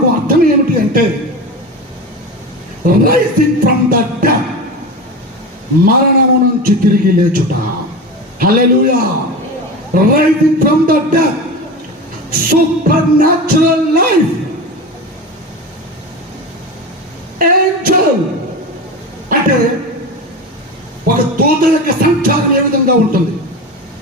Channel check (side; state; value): both; normal; correlation 0.26